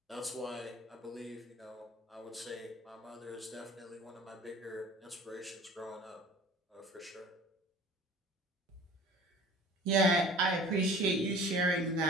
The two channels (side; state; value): both; normal; correlation 0.45